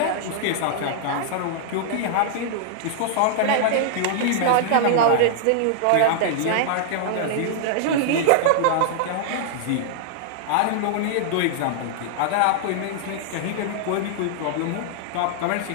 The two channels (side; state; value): both; different; correlation -0.01